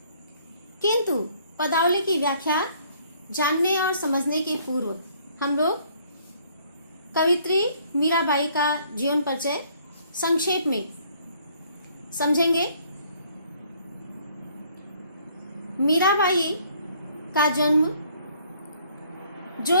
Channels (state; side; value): inverted; both; correlation -0.62